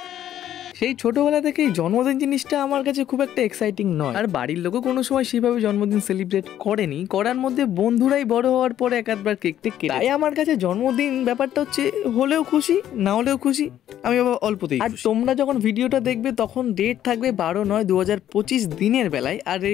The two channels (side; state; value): right; quieter; 11.3 dB